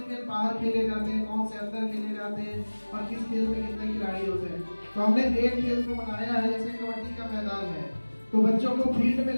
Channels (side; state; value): both; inverted; correlation -1.00